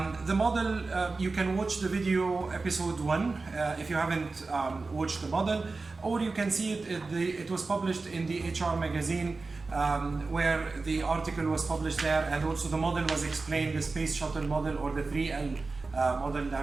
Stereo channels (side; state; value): left; quieter; 3.8 dB